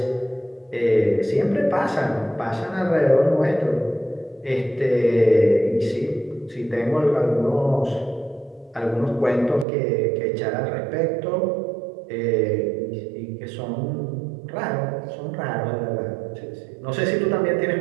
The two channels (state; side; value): drops out; left; at 9.7 s